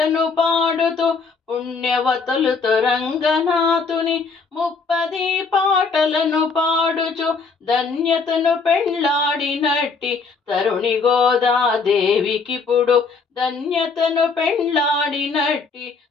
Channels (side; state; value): right; quieter; 4.7 dB